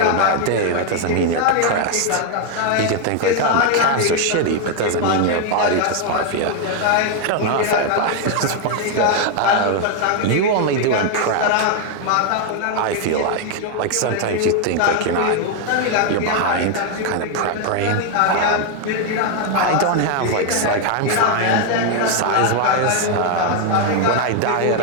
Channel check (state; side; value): different; both; correlation 0.01